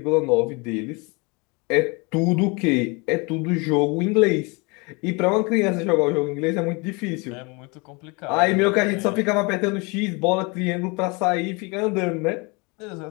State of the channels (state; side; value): quieter; right; 28.9 dB